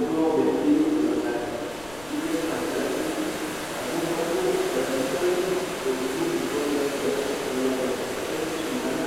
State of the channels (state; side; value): noise; left; rumble, 21 dB below the sound